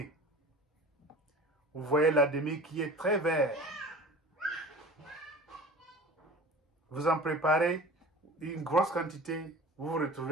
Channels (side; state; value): both; normal; correlation 0.39